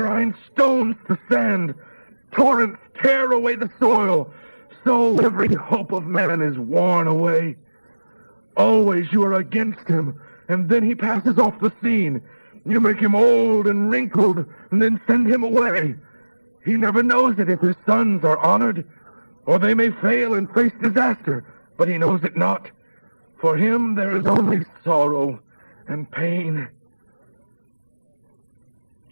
stones to sand. Torrents tear away the soil. So every hope of man is worn away. Always you are against him, and then he passes off the scene. You make him old and wrinkled, and then send him away. He never knows it if his sons are honored, or they may fail and face disaster, but he knows it not. For him there is only sorrow and pain.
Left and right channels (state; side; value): inverted; both; correlation -1.00